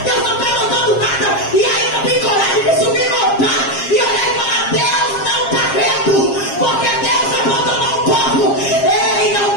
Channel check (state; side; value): late; right; 7.5 ms